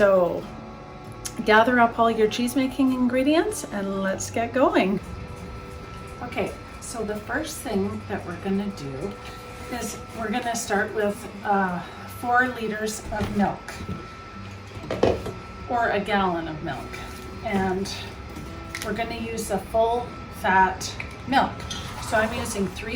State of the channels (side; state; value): both; identical; correlation 1.00